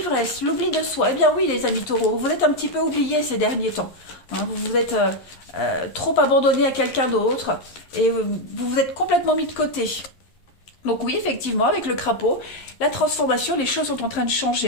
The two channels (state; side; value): late; right; 11 ms